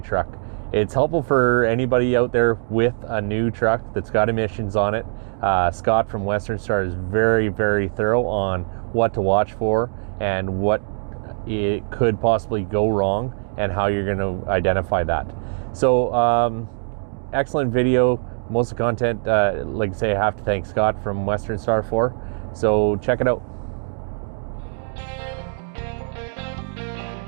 truck. It's helpful for anybody out there with a new truck that's got emissions on it. Scott from westernstar is very, very thorough on what to watch for and what it could possibly go wrong and how you're going to identify that. So, excellent video. Most of the content, like I say, I have to thank Scott from westernstar for. So check it out.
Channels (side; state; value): left; silent; digital silence